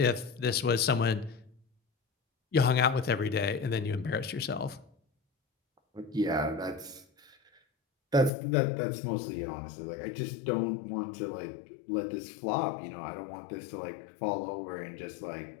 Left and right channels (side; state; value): right; drops out; at 8.3 s